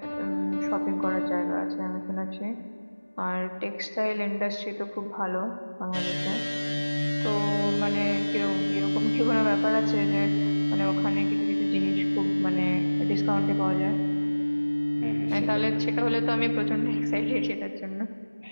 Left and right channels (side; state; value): both; inverted; correlation -1.00